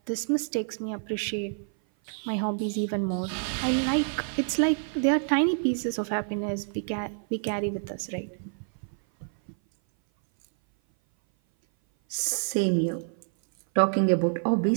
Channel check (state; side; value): silent; left; 57 dB below the other